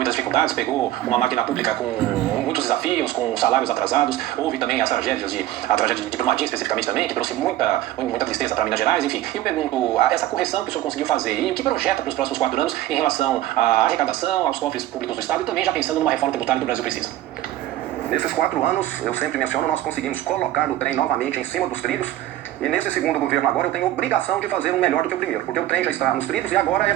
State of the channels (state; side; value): quieter; left; 14.3 dB